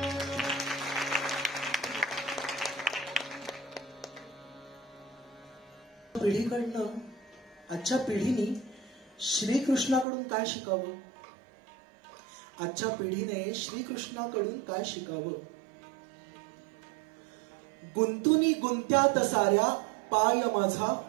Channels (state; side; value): drops out; left; at 10.1 s